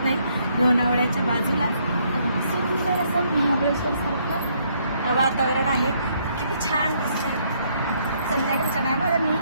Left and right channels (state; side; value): inverted; both; correlation -0.70